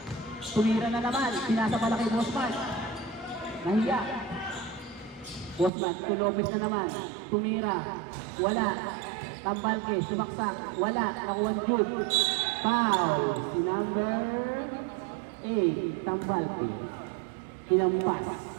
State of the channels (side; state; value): left; drops out; at 5.7 s